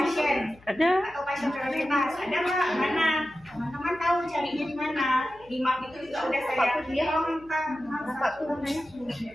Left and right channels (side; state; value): left; noise; hum, 26 dB below the sound